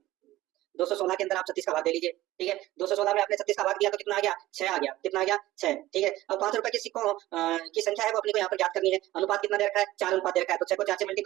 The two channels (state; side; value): quieter; left; 16.4 dB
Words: 216 के अंदर आप 36 का भाग दे लीजिए। ठीक है, 216 में आपने 36 का भाग दिया तो कितना आ गया 6 आ गया, कितना आ गया 6। ठीक है, अब 5 रुपए के सिक्कों की संख्या है वो अपने को यहाँ पर ज्ञात करनी है। अनुपात कितना दे रखा है, 4 अनुपात दे रखा है, तो 6 को 4 से